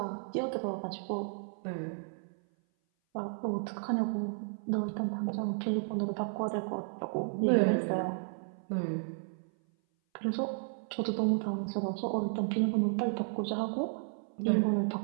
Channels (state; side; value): silent; left; 56 dB below the other